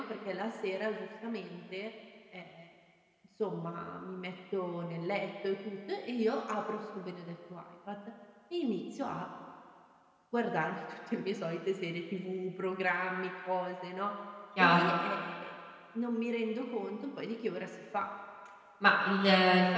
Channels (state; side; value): identical; both; correlation 1.00